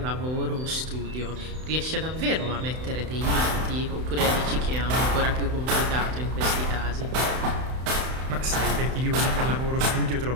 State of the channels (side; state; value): left; late; 31 ms